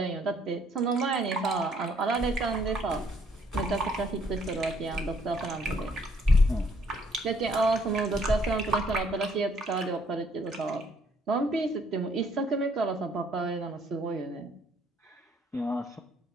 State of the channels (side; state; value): both; normal; correlation 0.65